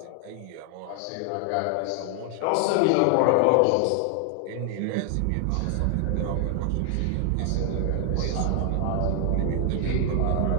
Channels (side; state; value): both; different; correlation 0.00